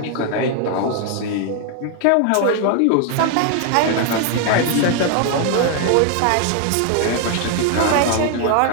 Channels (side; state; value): both; different; correlation 0.00